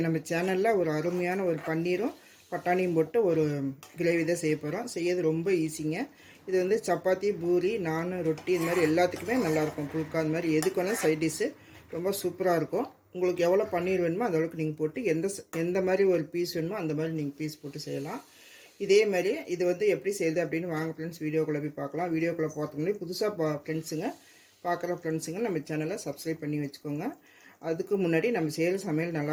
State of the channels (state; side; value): identical; both; correlation 1.00